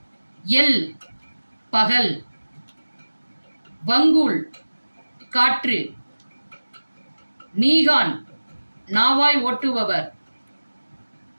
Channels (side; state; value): both; inverted; correlation -1.00